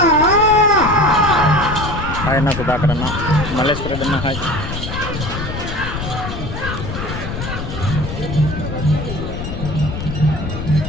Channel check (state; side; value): noise; left; rumble, 6 dB below the sound